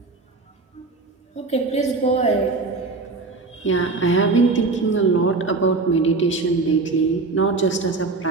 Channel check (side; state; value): left; quieter; 3.8 dB